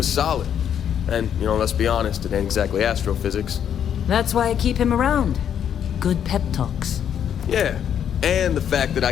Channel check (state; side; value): quieter; right; 9.0 dB